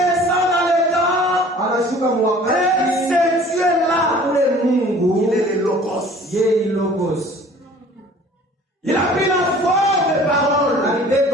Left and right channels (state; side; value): normal; both; correlation 0.49